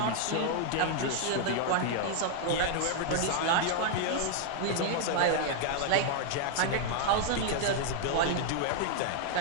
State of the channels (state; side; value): different; both; correlation 0.00